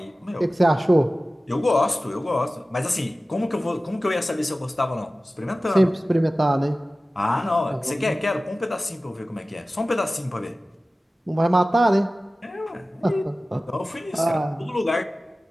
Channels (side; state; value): both; normal; correlation 0.96